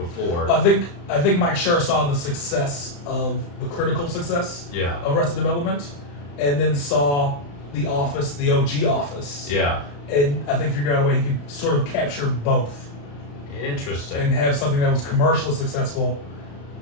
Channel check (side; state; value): right; late; 35 ms